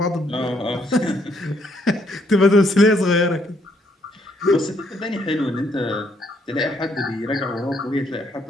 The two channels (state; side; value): normal; both; correlation 0.70